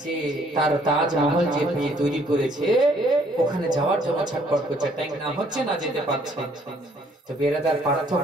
যে তার তাজমহল যে তৈরি করেছে ওখানে যাওয়ার জন্য ছটফট করছে, টাইম না হচ্ছে, না যেতে পারছে। তো বেরাদার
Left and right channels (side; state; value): both; normal; correlation 0.63